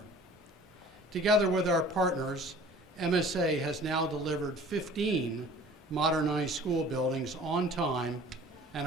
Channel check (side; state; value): both; normal; correlation 0.47